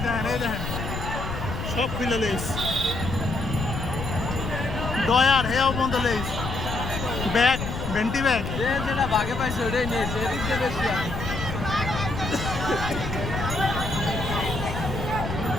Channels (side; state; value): left; noise; rumble, 5 dB below the sound